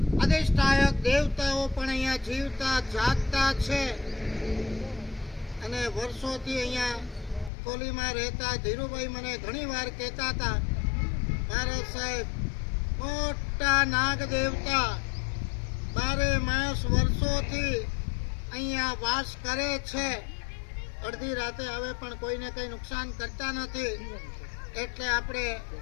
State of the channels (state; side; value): drops out; right; at 7.5 s